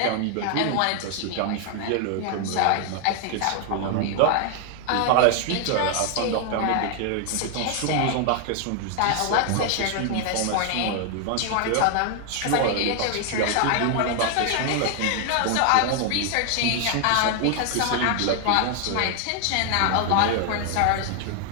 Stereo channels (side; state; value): both; different; correlation 0.00